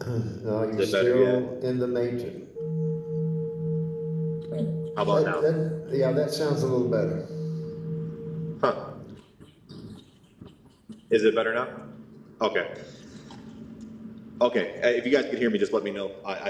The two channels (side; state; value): both; identical; correlation 1.00